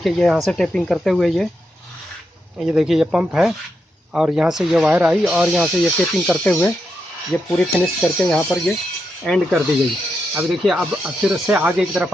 ये यहाँ से टेपिंग करते हुए ये देखिए, ये पंप है, और यहाँ से ये वायर आई, और यहाँ से ये टेपिंग करते हुए ये पूरी फिनिश करके यहाँ पर ये एंड कर दी गई। अब देखिए, अब फिर से आगे की तरफ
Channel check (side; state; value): both; normal; correlation 0.84